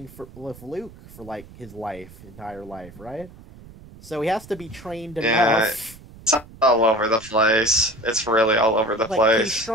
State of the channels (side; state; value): right; noise; rumble, 20 dB below the sound